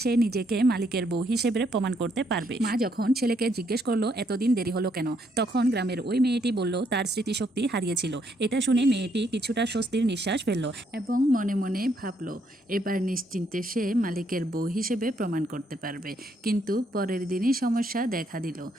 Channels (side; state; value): both; normal; correlation 0.73